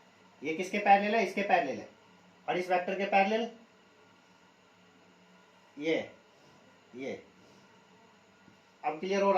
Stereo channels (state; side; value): identical; both; correlation 1.00